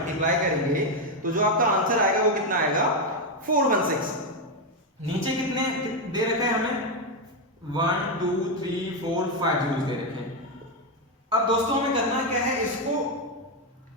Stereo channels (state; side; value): normal; both; correlation 0.05